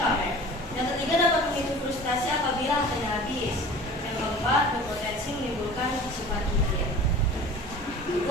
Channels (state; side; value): normal; both; correlation 0.42